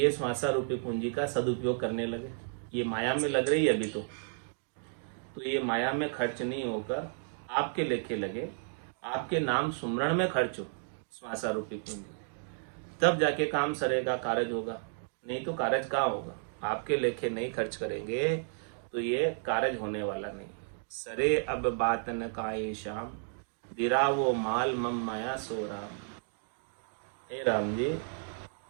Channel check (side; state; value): left; silent; digital silence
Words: श्वासा रूपी पूंजी का सदुपयोग करने लगे। ये माया में लग रही है अभी तो ये माया में खर्च नहीं होकर आपके लेखे लगे, आपके नाम सुमरण में खर्च हो श्वासा रूपी पूंजी, तब जाके काम सरेगा, कारज होगा। नहीं तो कारज कहाँ होगा। आपके लेखे नहीं खर्च करेंगे तो ये कारज होने वाला नहीं। सरे अब बात न काए श्याम, दिरा वो माल मम माया सो राम। हे राम जी,